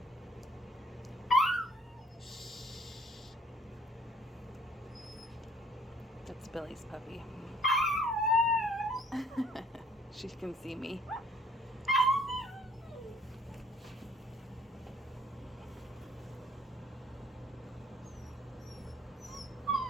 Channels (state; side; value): normal; both; correlation 0.60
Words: That's Billy's puppy. She can see me.